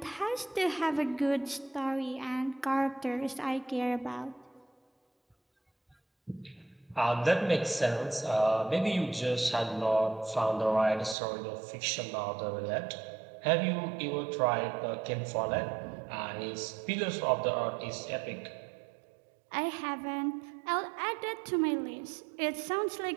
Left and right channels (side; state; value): left; drops out; at 11.2 s